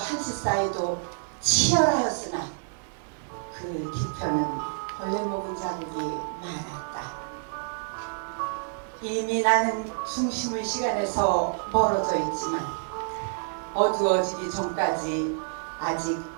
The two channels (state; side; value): silent; left; digital silence